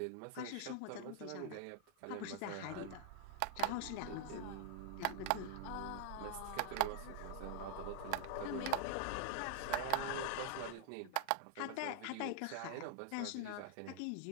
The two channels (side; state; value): both; different; correlation 0.00